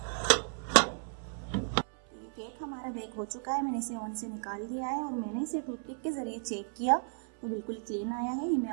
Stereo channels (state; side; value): silent; left; 55 dB below the other